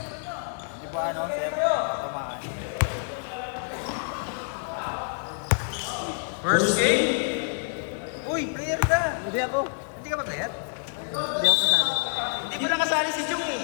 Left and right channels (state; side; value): silent; right; 60 dB below the other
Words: Di ba ano, sir? Tamaan. First game. Uy, player ka. Hindi ako. Hindi ka ba player? Hindi pa nakasali si Jung